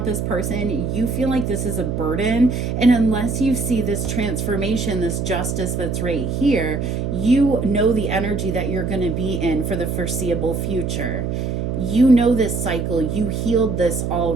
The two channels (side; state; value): right; noise; hum, 2 dB below the sound